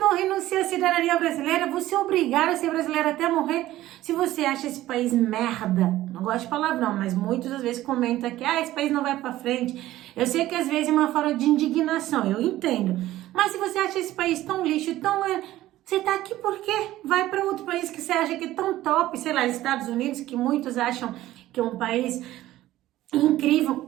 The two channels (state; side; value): quieter; left; 15.1 dB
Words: renunciam à cidadania brasileira, você é obrigado a ser brasileiro até morrer. Se você acha esse país merda, não gosto de palavrão, mas muitas às vezes comentam que esse país não vai pra frente. Eu sei que às vezes é uma forma de indignação, eu entendo. Mas se você acha esse país tão lixo, você tá aqui por quê? Vai para outro país que você acha que é tão top, sei lá, Estados Unidos, que muitos acham que é um país incrível,